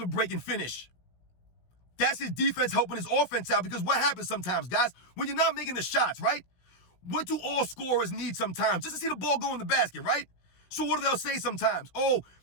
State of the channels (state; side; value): late; right; 16 ms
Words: break and finish. That's his defense helping his offense out, because what happens sometimes, guys, when you're not making the shots, right? What do all scorers need sometimes? Just to see the ball go in the basket, right? So what do they say sometimes? Oh,